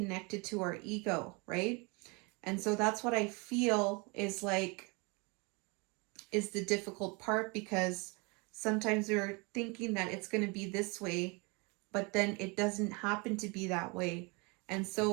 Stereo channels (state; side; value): quieter; left; 29.5 dB